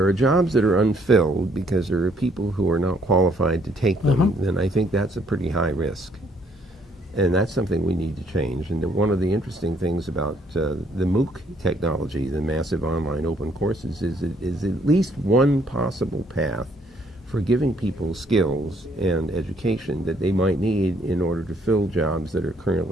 are jobs that are unfilled because there are people who are not qualified to take them, then I think that's a pretty high risk. And that's something we need to change. And one of the interesting things about the MOOC technology, the massive online open courses, is at least one possible path for giving people skills and education that they might need in order to fill jobs that are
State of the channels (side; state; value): both; normal; correlation 0.66